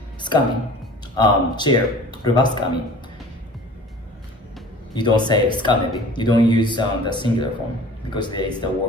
skami chair, ruba skami. you don't say skamebi. You don't use the singular form because there is the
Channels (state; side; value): normal; both; correlation 0.44